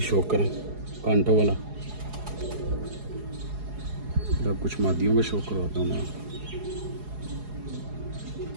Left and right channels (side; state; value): left; late; 4.8 ms